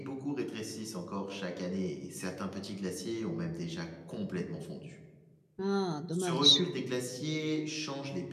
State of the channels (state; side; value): identical; both; correlation 1.00